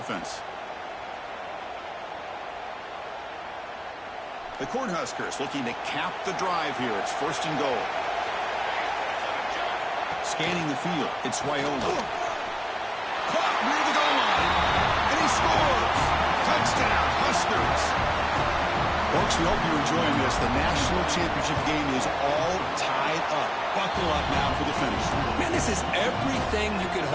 The Cornhuskers looking to cap the drive here. It's first and goal. Scanning the field. It's Raiola. Caught near the goal line, and he scores! Touchdown, Huskers! Folks, we hope you're enjoying this. The national championship game is all tied up. Buckle up now for the finish. Man, this is everything you could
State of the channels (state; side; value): identical; both; correlation 1.00